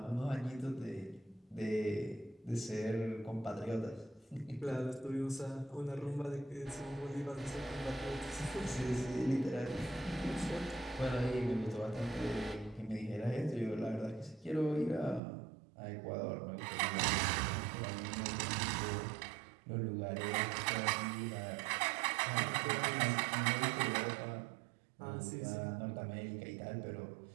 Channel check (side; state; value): left; drops out; at 15.2 s